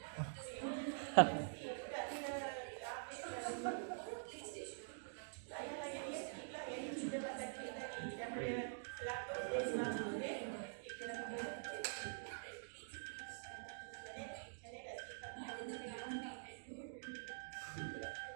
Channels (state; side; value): silent; left; digital silence